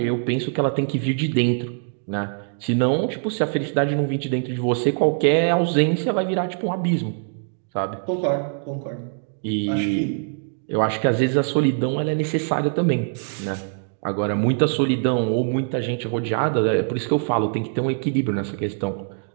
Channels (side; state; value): left; silent; digital silence